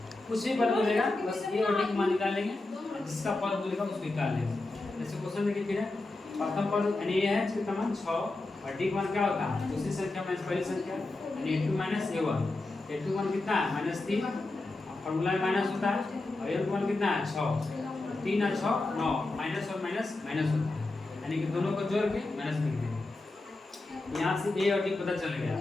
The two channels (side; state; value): right; quieter; 3.0 dB